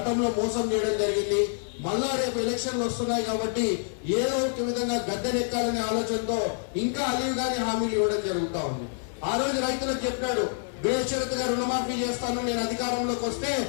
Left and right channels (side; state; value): right; silent; digital silence